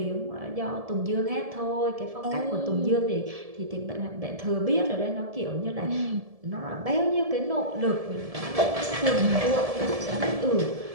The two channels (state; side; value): late; left; 1.7 ms